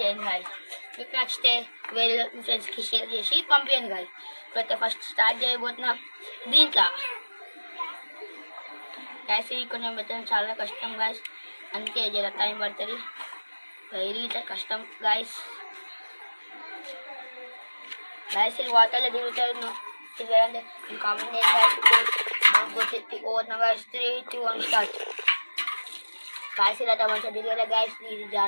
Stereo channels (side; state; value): both; inverted; correlation -1.00